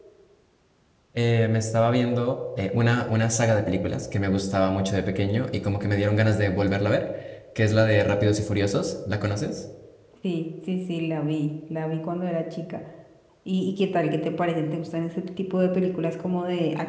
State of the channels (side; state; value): both; identical; correlation 1.00